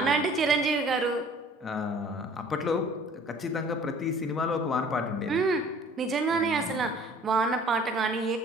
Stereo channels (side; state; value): both; normal; correlation 0.51